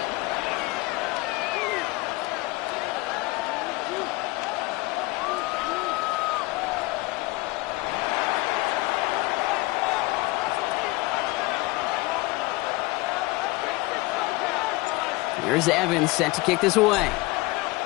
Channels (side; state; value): right; quieter; 22.1 dB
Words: Here's Evans set to kick this away.